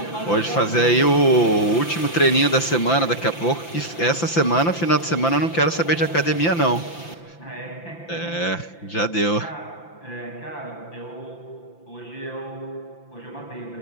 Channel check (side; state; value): right; late; 5.9 ms